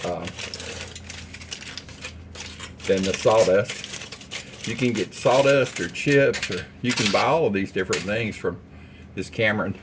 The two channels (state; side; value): identical; both; correlation 1.00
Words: than the sawdust. You can get sawdust or chips, or you can buy all of these different things from this Cameron.